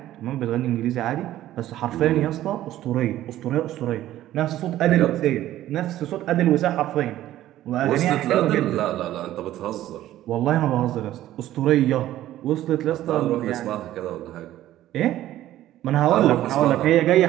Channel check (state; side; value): quieter; left; 13.7 dB